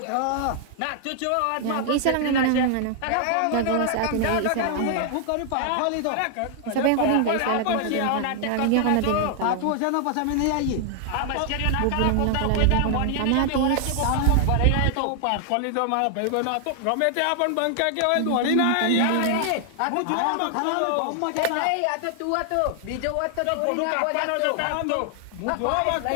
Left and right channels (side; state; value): both; different; correlation 0.00